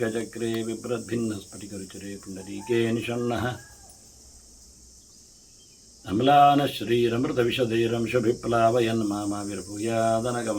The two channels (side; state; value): both; identical; correlation 1.00